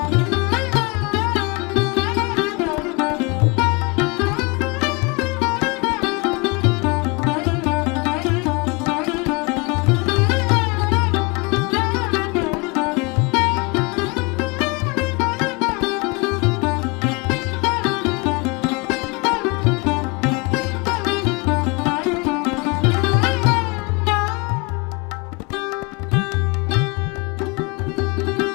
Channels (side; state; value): right; quieter; 28.2 dB